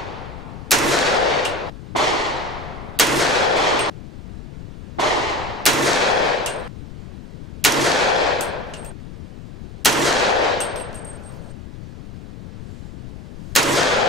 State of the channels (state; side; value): noise; left; rumble, 13 dB below the sound